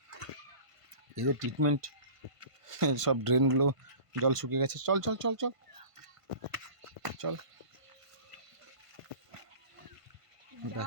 এদের ট্রিটমেন্ট, সব ড্রেনগুলো জল শুকিয়ে গেছে। চল চল চল চল চল,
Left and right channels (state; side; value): late; left; 1.5 ms